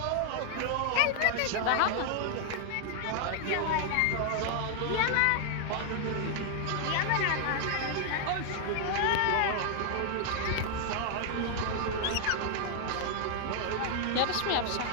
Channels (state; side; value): different; both; correlation 0.00